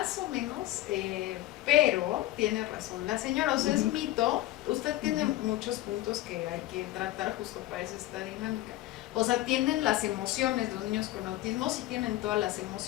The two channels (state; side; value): quieter; right; 15.6 dB